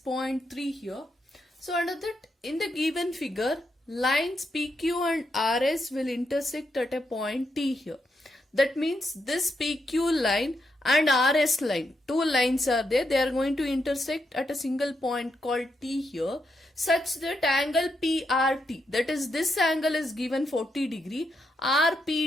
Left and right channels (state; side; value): normal; both; correlation 0.82